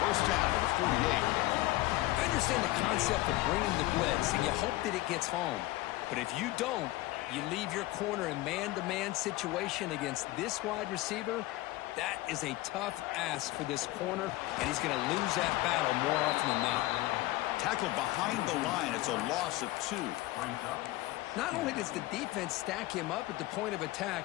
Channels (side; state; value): right; quieter; 18.3 dB